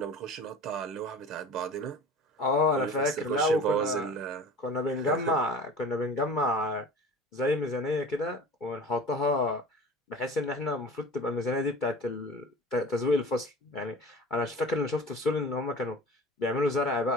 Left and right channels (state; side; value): normal; both; correlation 0.39